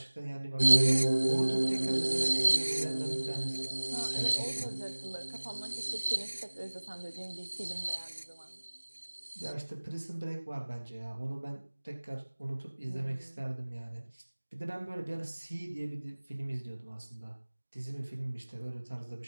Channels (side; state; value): both; inverted; correlation -1.00